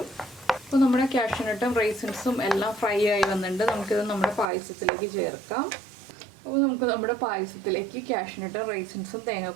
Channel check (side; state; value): left; drops out; at 4.5 s